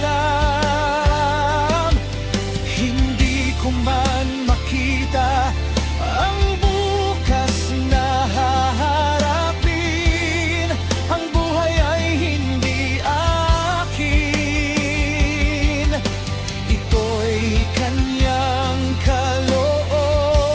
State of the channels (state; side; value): identical; both; correlation 1.00